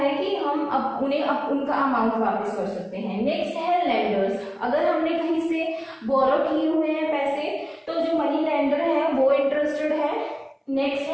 कि हम उन्हें उनका अमाउंट वापस कर सकते हैं। नेक्स्ट है लेंडर्स। अगर हमने कहीं से बोरो किए हुए हैं पैसे, तो जो मनी लेंडर है वो इंटरेस्टेड है। नेक्स्ट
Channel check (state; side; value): identical; both; correlation 1.00